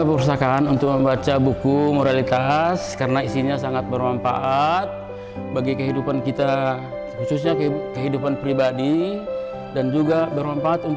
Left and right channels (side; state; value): both; identical; correlation 1.00